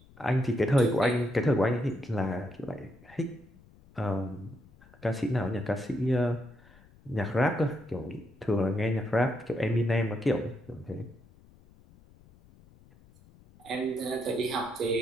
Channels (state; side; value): noise; left; rumble, 26 dB below the sound